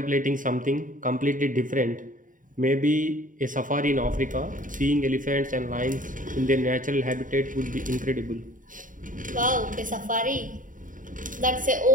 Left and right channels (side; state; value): left; late; 0.38 ms